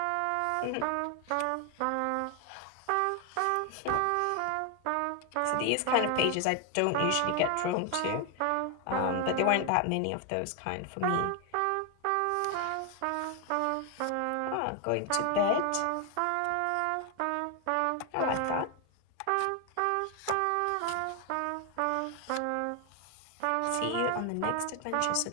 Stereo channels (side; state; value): both; different; correlation 0.00